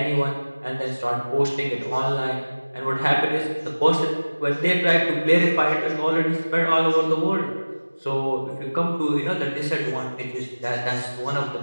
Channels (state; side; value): inverted; both; correlation -1.00